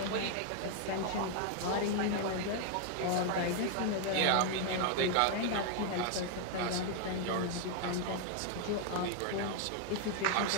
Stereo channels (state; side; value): different; both; correlation 0.00